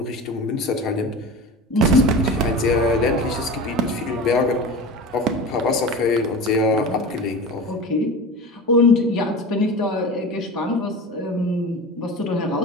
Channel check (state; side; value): normal; both; correlation 0.31